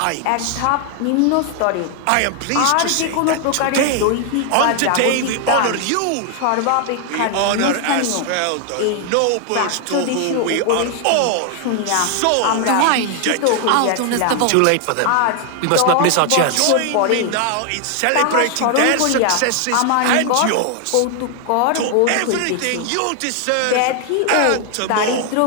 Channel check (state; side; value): different; both; correlation 0.00